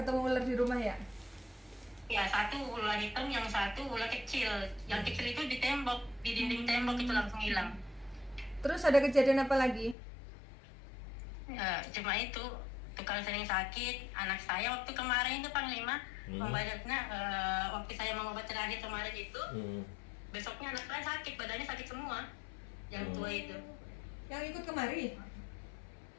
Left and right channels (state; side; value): drops out; right; at 10.0 s